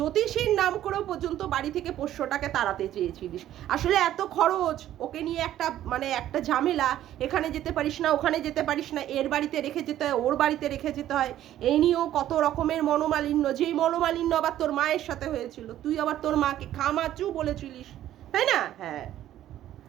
নাম করেও পর্যন্ত বাড়ি থেকে পোষ্যটাকে তাড়াতে চেয়েছিলিস। আসলে এত খরচ, ওকে নিয়ে একটা ঝামেলা, এখানে যেতে পারিস না, ওখানে যেতে পারিস না, এর বাড়িতে রেখে যেতে হয়, ওর বাড়িতে রেখে যেতে হয়, এই নিয়েও কত রকমের মনোমালিন্য, যেই মনোমালিন্য আবার তোর মায়ের সাথে হয়েছিল। তুই আবার তোর মাকে খামাচু বলেছিলিস, তাই না? হ্যাঁ,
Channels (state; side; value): quieter; left; 12.5 dB